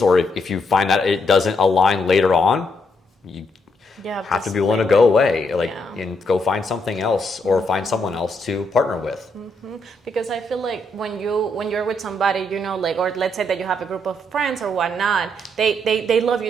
or if you find that it doesn't align later on, you have to be willing to go away, and go find something else, or find someone else to partner with. Because I feel when you're with somebody, or let's say that you have a group of friends or whatnot, they love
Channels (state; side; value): normal; both; correlation 0.76